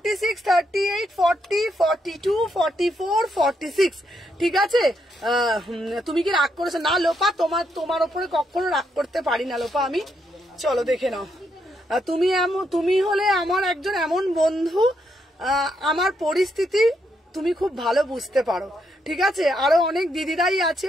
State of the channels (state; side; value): normal; both; correlation 0.78